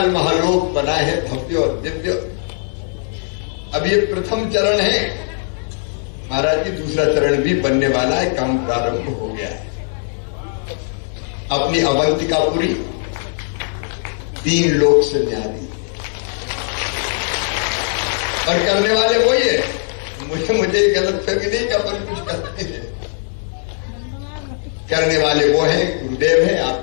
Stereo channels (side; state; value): right; silent; 66 dB below the other